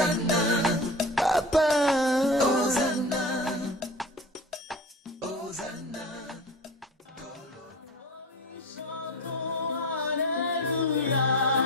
Papa, Hosanna, Hosanna.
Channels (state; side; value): normal; both; correlation 0.34